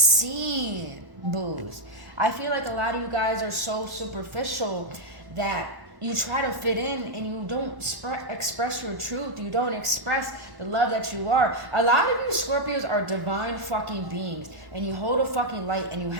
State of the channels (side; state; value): left; late; 1.1 ms